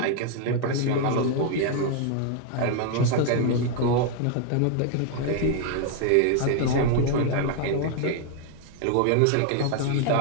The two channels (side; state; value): both; different; correlation 0.00